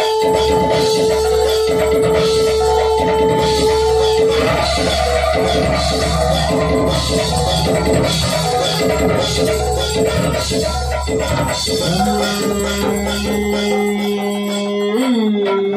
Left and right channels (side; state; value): both; identical; correlation 1.00